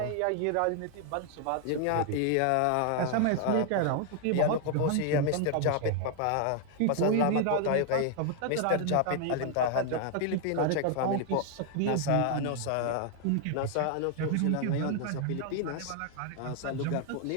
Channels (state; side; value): different; both; correlation 0.00